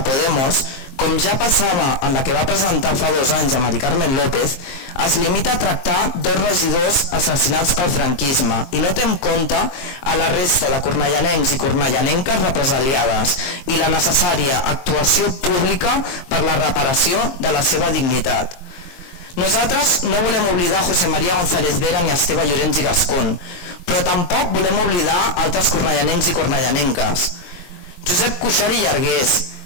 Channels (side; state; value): right; late; 22 ms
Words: Podemos, com ja passava en la que va presentar fa 2 anys a Mari Carmen López, es limita a tractar 2 regidors assassinats pel franquisme i no té en compte a la resta de cornellanencs i cornellanenques represaliades i la necessària actuació pública per la reparació de la seva dignitat. Nosaltres no volem oblidar José María González Vera ni Esteve Llorens i Gascón, però tampoc volem oblidar altres cornellanencs i cornellanenques. Josep Cuixart i Llargués,